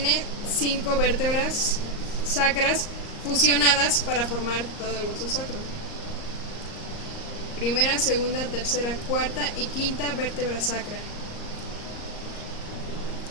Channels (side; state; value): right; late; 38 ms